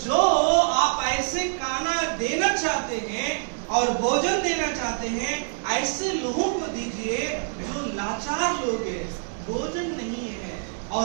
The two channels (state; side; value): silent; left; 60 dB below the other